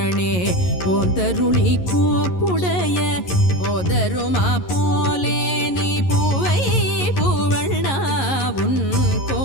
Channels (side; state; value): right; late; 11 ms